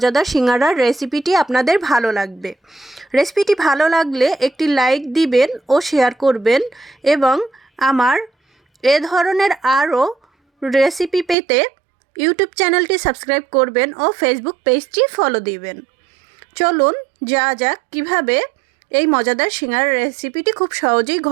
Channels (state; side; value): drops out; left; at 11.4 s